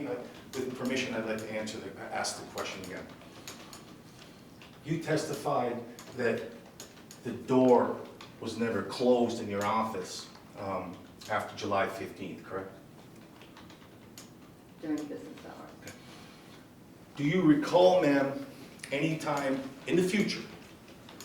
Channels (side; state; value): both; identical; correlation 1.00